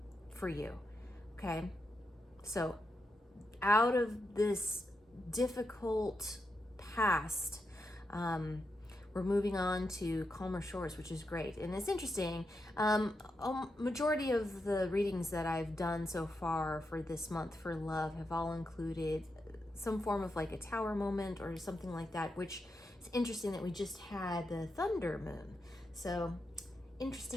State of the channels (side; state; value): both; normal; correlation 0.85